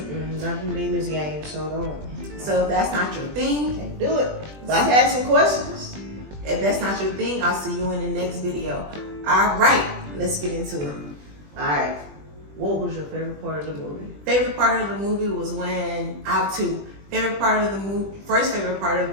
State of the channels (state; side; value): late; left; 20 ms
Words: Not the demons games, so don't. So if that's not your thing, Can't do it. But I had some questions. If that's not your thing, I'll see you in the next video. All right, let's get into it. All right. What was your favorite part of the movie? Favorite part of the movie was when I have two. Favorite part of the movie. First favorite part of